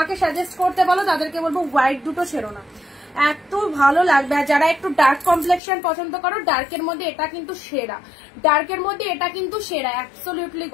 সাজেস্ট করতে বলো, তাদেরকে বলবো হোয়াইট দুটো ছেড়ো না, এত ভালো লাগবে। আর যারা একটু ডার্ক কমপ্লেক্সন পছন্দ করো, ডার্কের মধ্যে এটা কিন্তু সেরা, ডার্কের মধ্যে এটা কিন্তু সেরা, অ্যাবসলিউটলি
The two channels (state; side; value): drops out; right; at 5.6 s